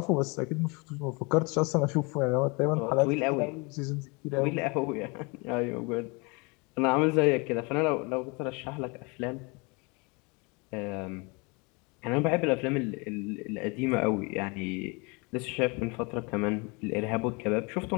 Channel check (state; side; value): quieter; right; 29.2 dB